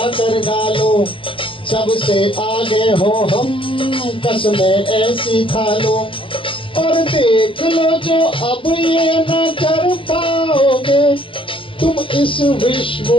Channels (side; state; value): right; late; 0.25 ms